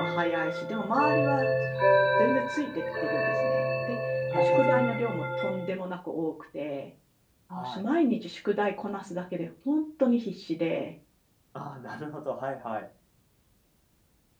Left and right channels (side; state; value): both; identical; correlation 1.00